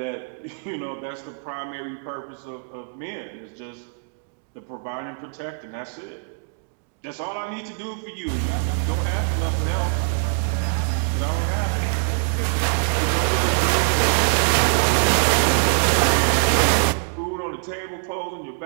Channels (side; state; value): left; silent; digital silence